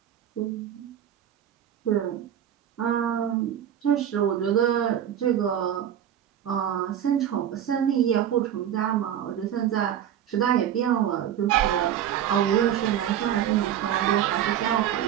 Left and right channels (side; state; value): left; quieter; 10.3 dB